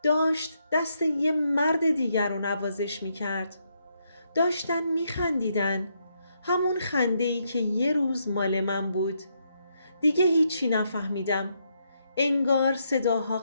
داشت دست یه مرد دیگر رو نوازش می کرد. داشتن می خندیدن. همون خنده‌ای که یه روز مال من بود. دیگه هیچی نفهمیدم. انگار صداها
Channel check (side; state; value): both; inverted; correlation -0.78